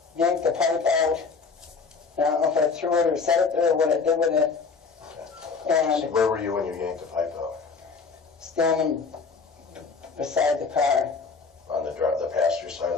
yanked the pipe out. And I don't know if I threw it or set it there or what I did with it. So And where were you when you yanked the pipe out? standing beside the car. On the passenger side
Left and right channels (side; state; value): right; quieter; 5.0 dB